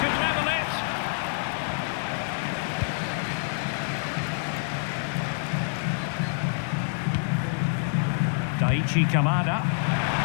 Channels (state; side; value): silent; right; digital silence